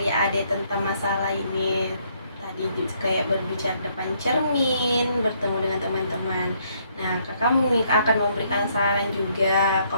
ade tentang masalah ini, kayak berbicara depan cermin, bertemu dengan teman-teman. Nah, kakak akan memberikan saran juga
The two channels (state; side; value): inverted; both; correlation -0.70